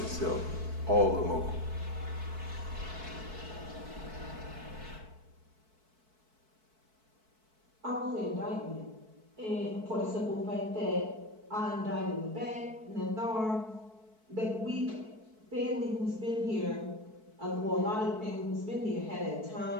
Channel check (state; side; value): late; left; 4.6 ms